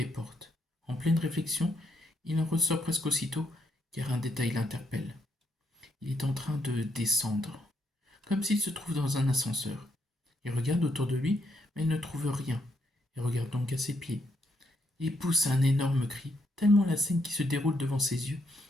portes. En pleine réflexion, il en ressort presque aussitôt, car un détail l'interpelle. Il est en train de descendre, comme s'il se trouve dans un ascenseur. Il regarde autour de lui, mais ne trouve rien, et regarde donc à ses pieds. Il pousse un énorme cri, tellement la scène qui se déroule devant ses yeux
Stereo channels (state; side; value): normal; both; correlation 0.77